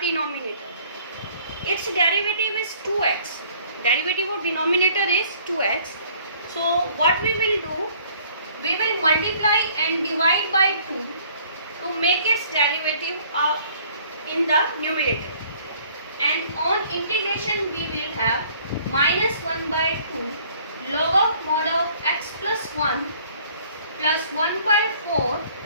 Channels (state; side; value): inverted; both; correlation -0.57